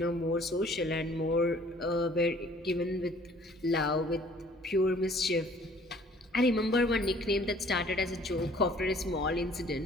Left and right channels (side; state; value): both; normal; correlation 0.56